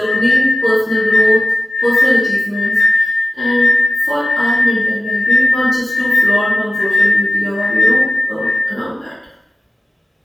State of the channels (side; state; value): both; normal; correlation 0.97